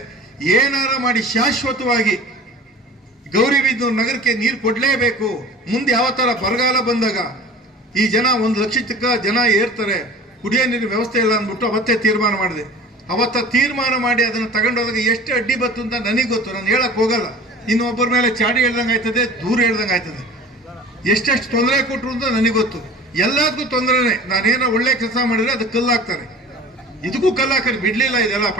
ಏನಾರ ಮಾಡಿ ಶಾಶ್ವತವಾಗಿ ಗೌರಿಬಿದನೂರು ನಗರಕ್ಕೆ ನೀರು ಕೊಡಲೇಬೇಕು. ಮುಂದೆ ಯಾವ ಥರ ಬರಗಾಲ ಬಂದಾಗ ಈ ಜನ 1 ಲಕ್ಷ ಜನ ಏರ್ತಾರೆ, ಕುಡಿಯೋ ನೀರಿನ ವ್ಯವಸ್ಥೆ ಇಲ್ಲ ಅಂದ್ಬಿಟ್ಟು ಅವತ್ತೇ ತೀರ್ಮಾನ ಮಾಡಿದೆ. ಅವತ್ತ ತೀರ್ಮಾನ ಮಾಡಿ ಅದನ್ನು ತಗೊಂಡೋದಾಗ ಎಷ್ಟು ಅಡ್ಡಿ ಬತ್ತು ಅಂತ ನನಗೆ ಗೊತ್ತು, ನಾನು ಹೇಳಕ್ ಹೋಗಲ್ಲ. ಇನ್ನೊಬ್ಬರ ಮೇಲೆ ಚಾಡಿ ಹೇಳ್ದಂಗೆ ಆಯ್ತದೆ, ದೂರ ಹೇಳ್ದಂಗೆ ಆಯ್ತದೆ. ಎಷ್ಟೆಷ್ಟು ತೊಂದರೆ ಕೊಟ್ಟರು ಅಂತ ನನಗೆ ಗೊತ್ತು. ಎಲ್ಲದಕ್ಕೂ ತೊಂದರೆನೇ. ನಾನೇನೋ ಒಳ್ಳೆ ಕೆಲಸ ಮಾಡಿದ್ರೆ ಅದಕ್ಕೆ ಕಲ್ಲು ಹಾಕ್ತಾರೆ, ಇದಕ್ಕೂ ಕಲ್ಲು ಹಾಕಿ ಬಿಡ್ಲಿಲ್ಲ. ಇದೆಲ್ಲ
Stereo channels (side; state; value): both; normal; correlation 0.41